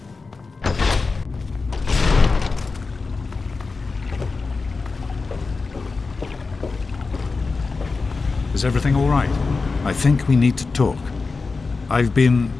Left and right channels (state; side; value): quieter; right; 4.2 dB